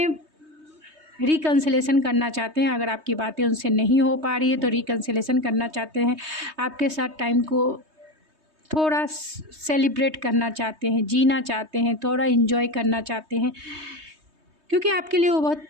रिकन्सिलेशन करना चाहते हैं, अगर आपकी बातें उनसे नहीं हो पा रही है तो रिकन्सिलेशन करना चाहते हैं, आपके साथ टाइम को थोड़ा सेलिब्रेट करना चाहते हैं, जीना चाहते हैं, थोड़ा इन्जॉय करना चाहते हैं, क्योंकि आपके लिए वो बहुत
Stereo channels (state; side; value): late; left; 3.2 ms